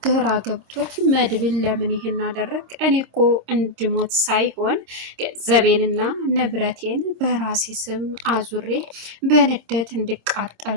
ግራ ገብቶት መድብል ለምን ይሄን አደረግ? እኔ እኮ እንድሞት ሳይሆን ገንዘቤንና ንብረቴን በራሴ ስም አዙሬ በንደት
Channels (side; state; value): left; late; 26 ms